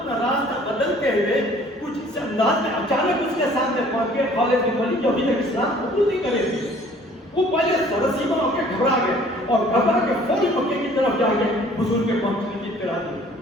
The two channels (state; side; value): normal; both; correlation 0.54